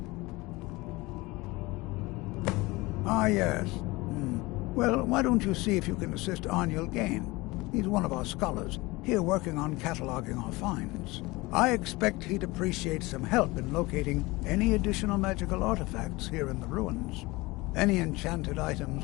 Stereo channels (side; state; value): right; quieter; 22.2 dB